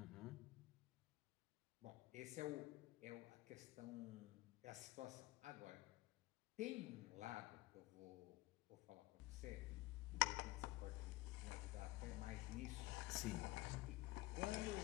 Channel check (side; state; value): right; quieter; 19.4 dB